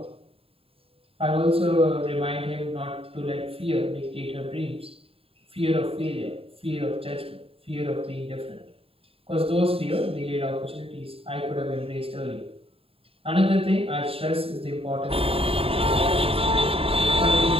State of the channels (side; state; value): left; late; 0.27 ms